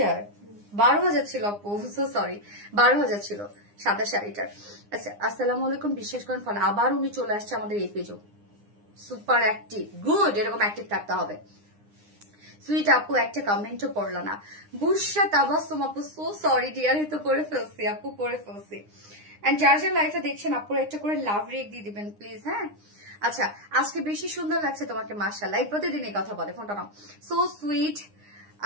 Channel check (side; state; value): left; late; 9.8 ms